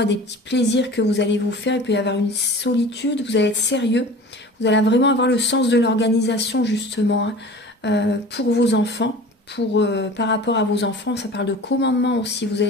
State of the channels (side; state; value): both; normal; correlation 0.40